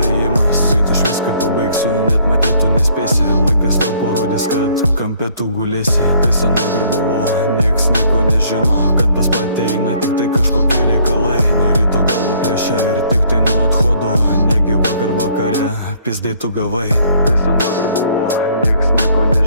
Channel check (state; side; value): inverted; both; correlation -0.62